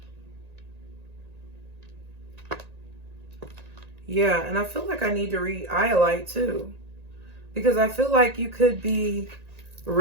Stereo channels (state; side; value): late; left; 1.9 ms